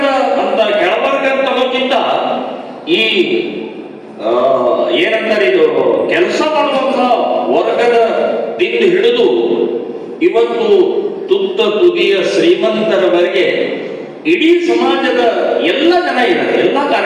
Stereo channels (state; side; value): identical; both; correlation 1.00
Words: ಅನ್ನೋಕ್ಕಿಂತ ಈ ಏನಂತಾರೆ, ಇದು ಕೆಲಸ ಮಾಡುವಂತಹ ವರ್ಗದ ದಿಂದ ಹಿಡಿದು ಇವತ್ತು ತುತ್ತ ತುದಿಯ ಶ್ರೀಮಂತರವರೆಗೆ ಇಡೀ ಸಮಾಜದ ಎಲ್ಲ ಜನ ಇದ್ದಾರೆ, ಎಲ್ಲ